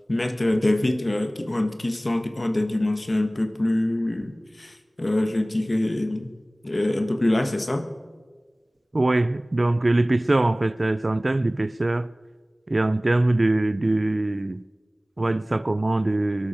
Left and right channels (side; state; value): both; normal; correlation 0.98